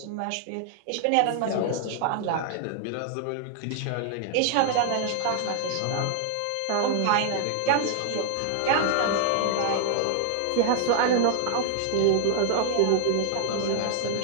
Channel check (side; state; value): both; different; correlation 0.00